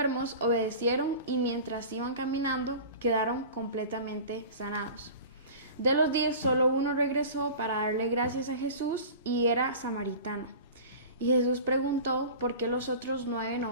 obedecieron y mientras iban caminando, quedaron completamente sanados. De los 10, solo uno regresó para darle gracias a Jesús y era samaritano. Y Jesús preguntó por qué los otros 9 no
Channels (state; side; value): inverted; both; correlation -0.37